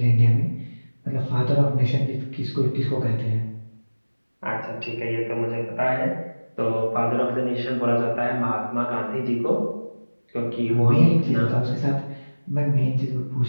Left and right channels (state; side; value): inverted; both; correlation -1.00